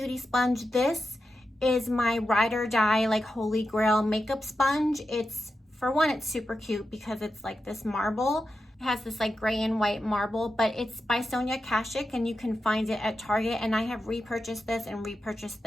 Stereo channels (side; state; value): both; normal; correlation 0.89